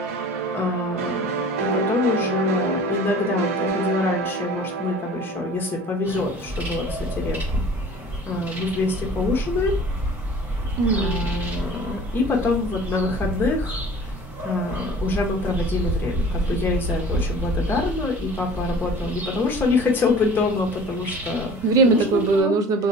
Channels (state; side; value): normal; both; correlation 0.45